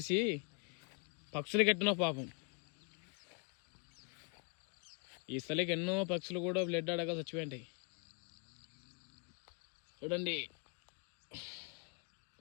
పక్షులు కట్టిన పాపం. ఈ స్థలికి ఎన్నో పక్షులు కూడా బ్లడ్ అడగా చచ్చిపోయింటాయి. చూడండి,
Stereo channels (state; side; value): quieter; right; 33.8 dB